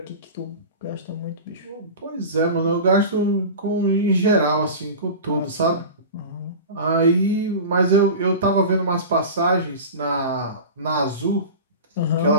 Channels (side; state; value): both; inverted; correlation -0.31